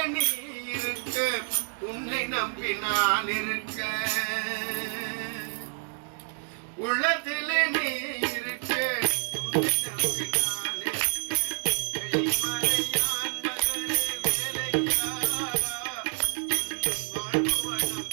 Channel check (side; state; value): left; silent; digital silence